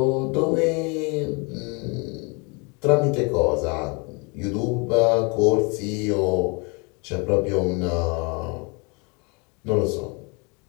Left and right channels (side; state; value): right; quieter; 31.3 dB